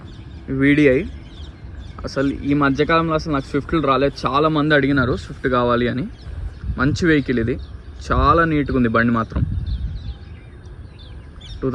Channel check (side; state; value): both; identical; correlation 1.00